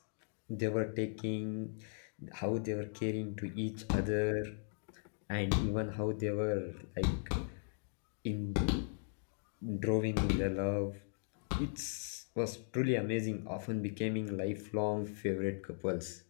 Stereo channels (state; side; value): silent; right; digital silence